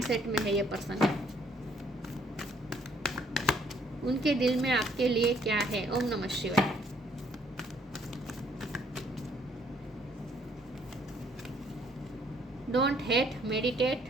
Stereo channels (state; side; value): normal; both; correlation 0.65